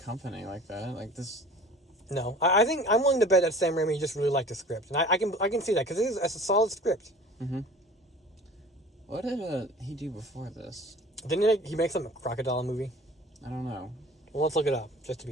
like that. Like this. No, I think I'm willing to bet that Sam Raimi just really liked the script, and I can see that because it's a solid script. Mm-hmm. What did he do before this? Didn't he make some crocodile movie? I don't know. Well, let's look it up just to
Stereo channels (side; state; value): both; normal; correlation 0.44